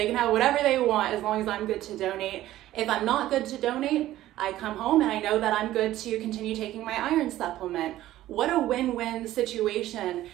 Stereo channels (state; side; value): quieter; left; 14.5 dB